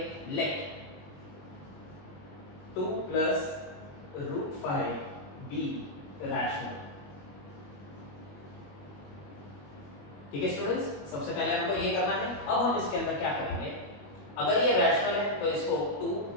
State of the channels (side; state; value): right; late; 21 ms